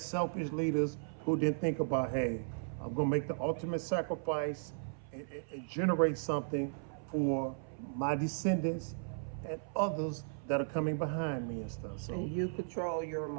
leaders who didn't think about, hey, I'm gonna make the ultimate sacrifice and generate something for my descendants and others that are coming behind me and stuff. So And you control your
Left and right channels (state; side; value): silent; left; 54 dB below the other